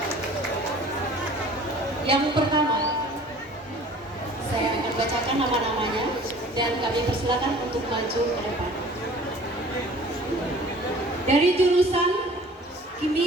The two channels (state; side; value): normal; both; correlation 0.49